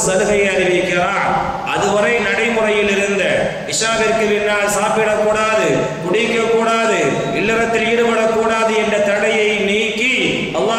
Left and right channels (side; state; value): both; identical; correlation 1.00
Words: சலுகையை அறிவிக்கிறான். அதுவரை நடைமுறையில் இருந்த இஷாவிற்கு பின்னால் சாப்பிடக்கூடாது, குடிக்கக்கூடாது, இல்லறத்தில் ஈடுபடக்கூடாது என்ற தடையை நீக்கி